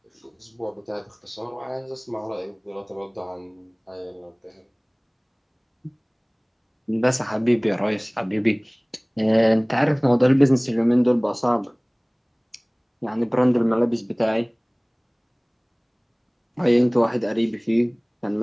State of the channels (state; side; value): identical; both; correlation 1.00